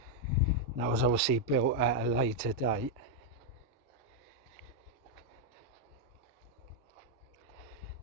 That was obviously built at a later date.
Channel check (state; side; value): normal; both; correlation -0.01